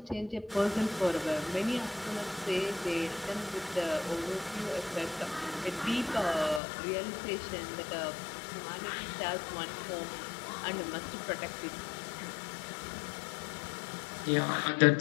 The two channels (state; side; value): drops out; right; at 6.6 s